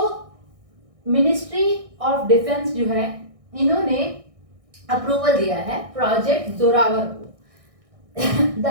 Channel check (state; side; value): late; left; 1.6 ms